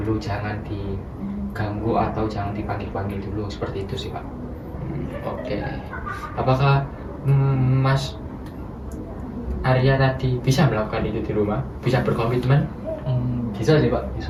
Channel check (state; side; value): identical; both; correlation 1.00